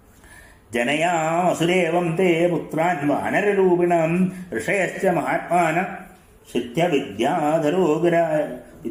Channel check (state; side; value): identical; both; correlation 1.00